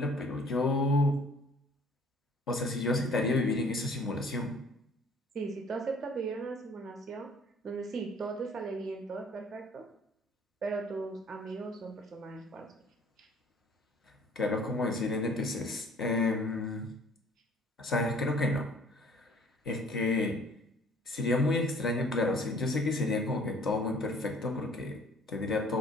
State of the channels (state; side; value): normal; both; correlation 0.54